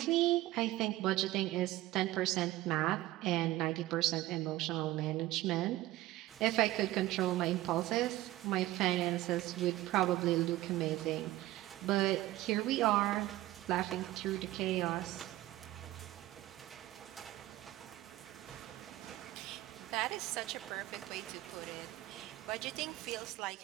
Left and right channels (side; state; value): left; quieter; 16.5 dB